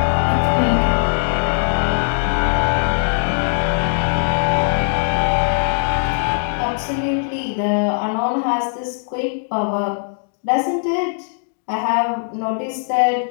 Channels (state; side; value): silent; right; digital silence